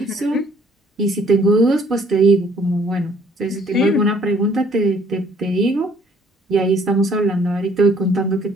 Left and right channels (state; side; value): normal; both; correlation 0.60